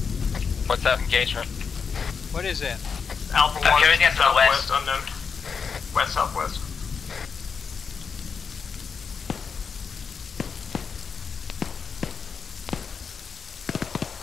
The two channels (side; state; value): right; quieter; 5.9 dB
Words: What's that engagement? What is that? Alpha 1, carrying it to the southwest, west. unknown. West-southwest.